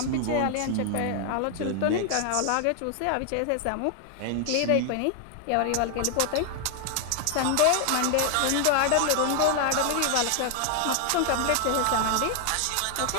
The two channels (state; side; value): different; both; correlation 0.00